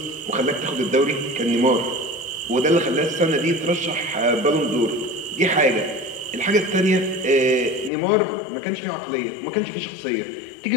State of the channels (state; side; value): drops out; right; at 7.9 s